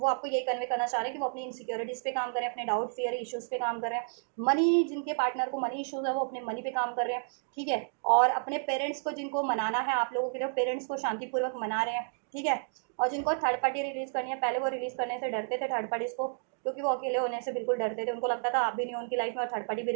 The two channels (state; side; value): silent; left; digital silence